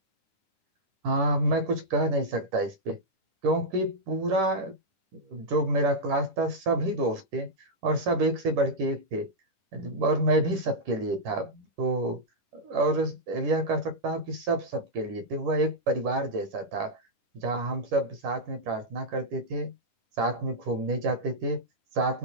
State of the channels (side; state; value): left; late; 10 ms